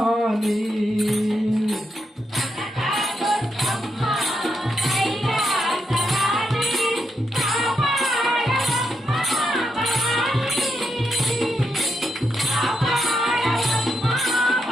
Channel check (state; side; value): normal; both; correlation 0.82